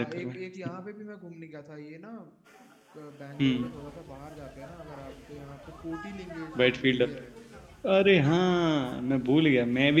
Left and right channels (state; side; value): identical; both; correlation 1.00